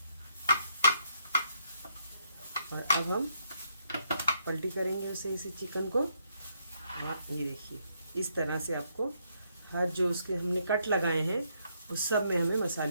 और अब हम पलटी करेंगे उसे इसी चिकन को। हाँ ये देखिए इस तरह से आपको हर जो उसके हमने कट लगाए हैं उस सब में हमें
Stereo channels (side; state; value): both; inverted; correlation -0.75